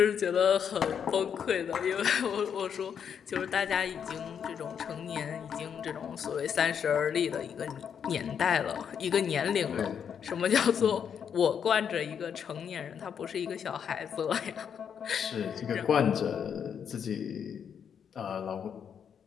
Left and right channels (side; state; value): right; quieter; 7.7 dB